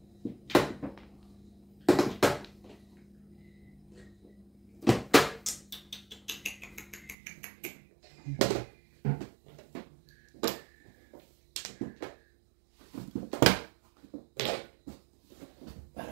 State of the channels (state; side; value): drops out; left; at 7.2 s